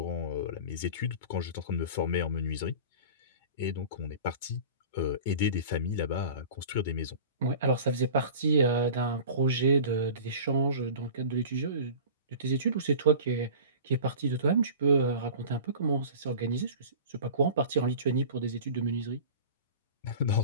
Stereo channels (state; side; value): inverted; both; correlation -0.38